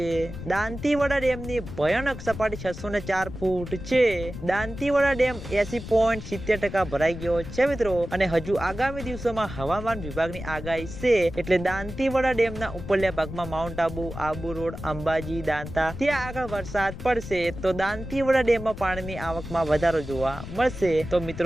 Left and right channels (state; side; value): noise; left; rumble, 10 dB below the sound